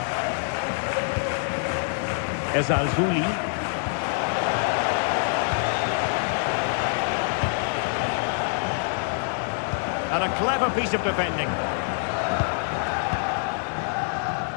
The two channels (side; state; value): right; silent; digital silence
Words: Ezalzouli. And a clever piece of defending.